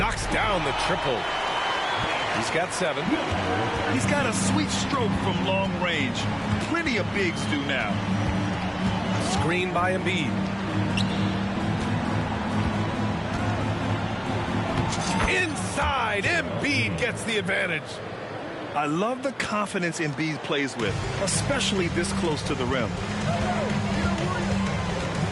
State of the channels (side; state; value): both; identical; correlation 1.00